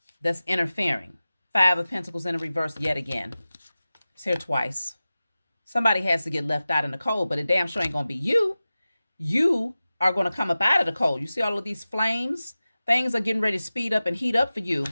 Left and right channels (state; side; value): inverted; both; correlation -0.96